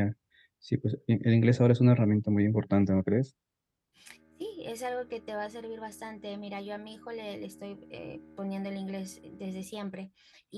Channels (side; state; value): both; identical; correlation 1.00